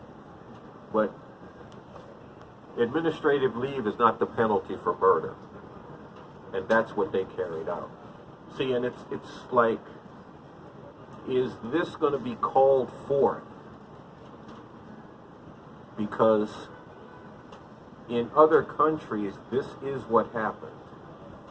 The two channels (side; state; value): both; identical; correlation 1.00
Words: But administrative leave is not the penalty for murder. And that's what they carried out. See, and it's like, is this going to be called forth? Because in other countries, this is what happened.